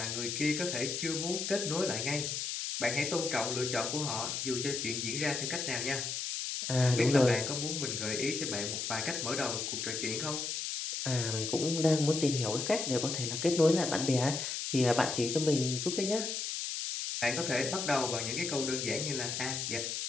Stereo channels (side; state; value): left; noise; hiss, 3 dB below the sound